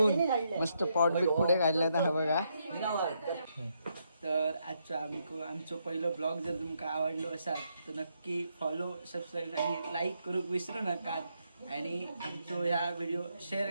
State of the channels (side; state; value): both; inverted; correlation -0.78